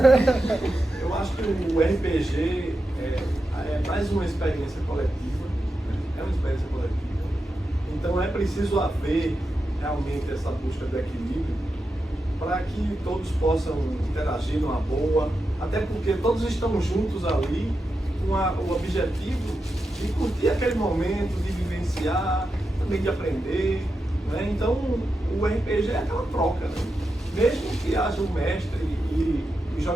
Eu acho que o RPG é mais uma experiência coletiva, né? É uma experiência coletiva. Então é preciso haver realmente essa busca do equilíbrio para que todos possam interagir numa boa, até porque todos estão juntos ali com o objetivo de curtir aquele momento, de vivenciar, também de aprender, né? Então o RPG é aquela troca, né? Mesmo que haja um mestre e os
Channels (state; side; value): normal; both; correlation 0.88